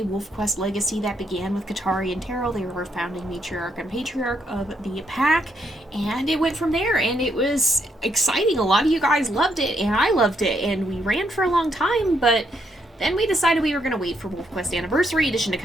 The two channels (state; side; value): normal; both; correlation 0.76